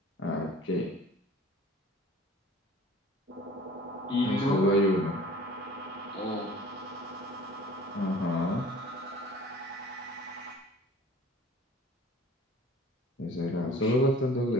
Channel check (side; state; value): both; normal; correlation 0.46